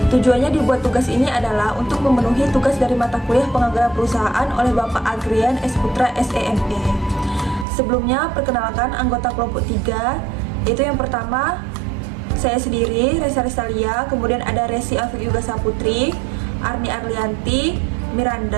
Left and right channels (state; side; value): drops out; left; at 7.7 s